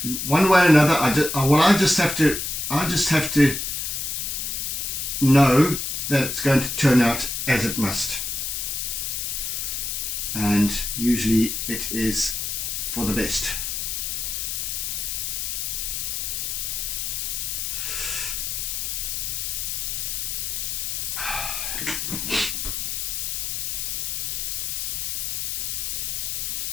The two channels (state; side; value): noise; left; hiss, 2 dB below the sound